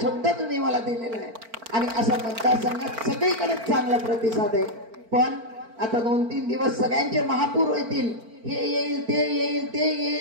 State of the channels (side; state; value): left; late; 4.4 ms